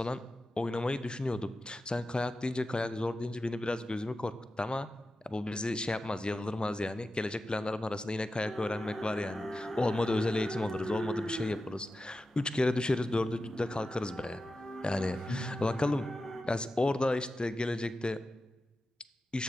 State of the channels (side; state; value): both; normal; correlation 0.92